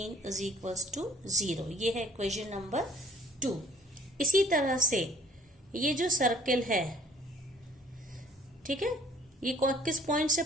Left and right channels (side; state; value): both; normal; correlation 0.55